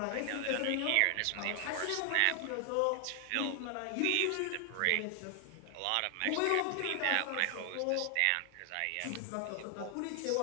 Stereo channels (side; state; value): both; different; correlation 0.00